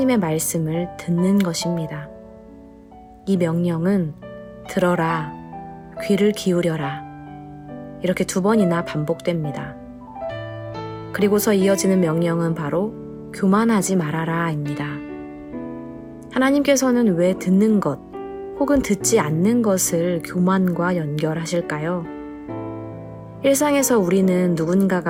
말씀을 듣는 것입니다. 이 명령은 들어라, 귀를 기울여라. 이렇게 2번이나 반복됩니다. 그리고서 이어지는 명령은 바로 교만하지 말아라입니다. 하나님께서는 왜 듣는 것 혹은 듣지 않는 것을 교만과 연결하실까요? 일상에서 우리는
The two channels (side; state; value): both; identical; correlation 1.00